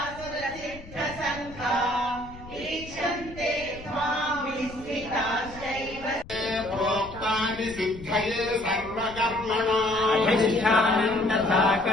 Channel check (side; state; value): left; noise; rumble, 17 dB below the sound